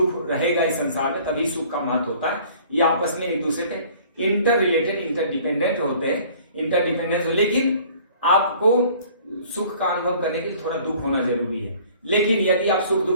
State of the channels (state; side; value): inverted; both; correlation -0.52